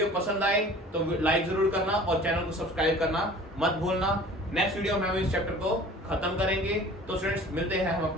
पसंद आए तो लाइक जरूर करना और चैनल को सब्सक्राइब करना मत भूलना। नेक्स्ट वीडियो में हम इस चैप्टर को खत्म करेंगे। तो स्टूडेंट्स मिलते हैं हम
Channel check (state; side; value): normal; both; correlation 0.46